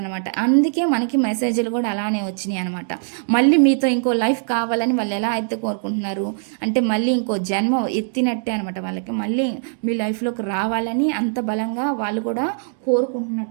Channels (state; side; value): silent; left; digital silence